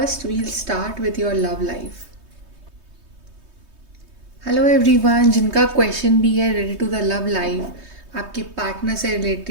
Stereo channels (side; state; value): left; late; 3.2 ms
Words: we'll start with your love life. Hello everyone, जिनका क्वेश्चन भी है related to the love life, आपके पार्टनर से